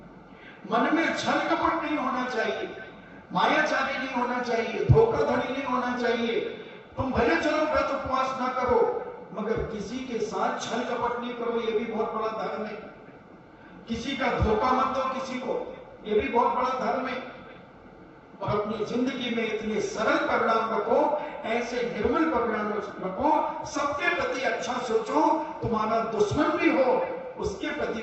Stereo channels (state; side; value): identical; both; correlation 1.00